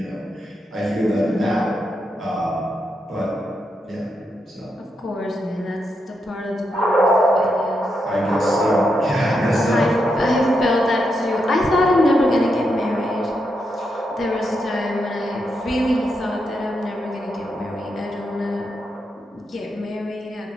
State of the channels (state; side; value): normal; both; correlation 0.83